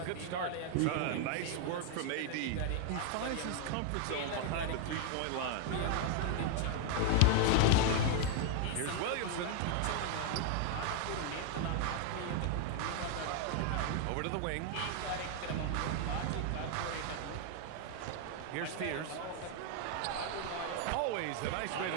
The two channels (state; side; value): different; both; correlation 0.00